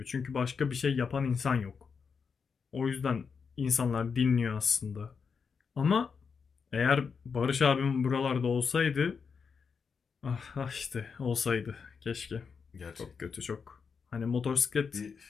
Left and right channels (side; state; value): right; quieter; 5.8 dB